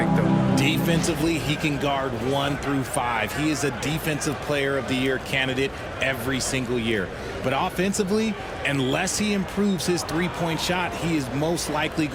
though? Defensively, he can guard 1 through 5. He is a Defensive Player of the Year candidate every single year. But offensively, unless he improves his three-point shot, he is most likely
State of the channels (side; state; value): both; identical; correlation 1.00